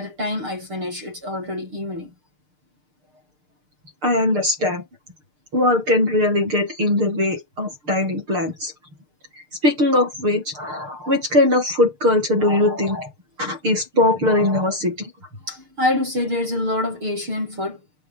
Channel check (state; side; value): late; left; 6.6 ms